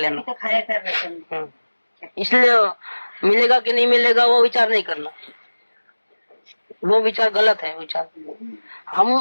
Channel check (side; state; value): both; inverted; correlation -1.00